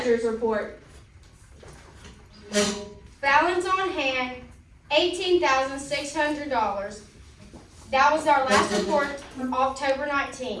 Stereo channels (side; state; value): both; identical; correlation 1.00